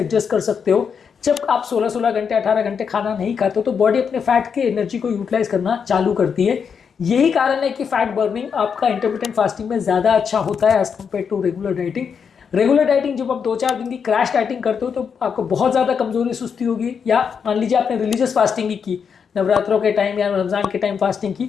कर सकते हो। जब आप 16-16 घंटे 18 घंटे खाना नहीं खाते हो तो बॉडी अपने फैट के एनर्जी को यूटिलाइज करना चालू करती है। यही कारण है कि फैट बर्निंग आपका इंटरमिटेंट फास्टिंग में ज़्यादा अच्छा होता है as compare to regular dieting. Regular dieting जब आप 2-4 दिन की क्रैश डाइटिंग करते हो तो आपको बहुत ज़्यादा कमजोरी सुस्ती होगी। या मान लीजिए आपने रिलीजियस फास्टिंग की, नवरात्रों के टाइम या रमजान के टाइम फास्टिंग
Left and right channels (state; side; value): quieter; right; 6.6 dB